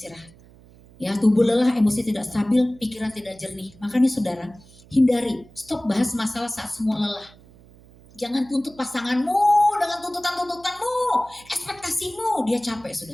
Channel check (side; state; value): right; noise; hum, 24 dB below the sound